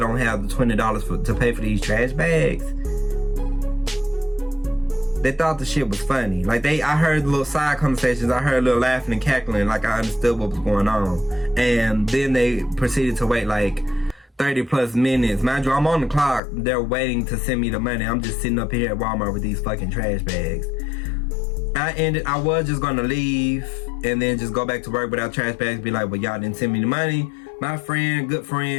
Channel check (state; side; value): drops out; right; at 16.4 s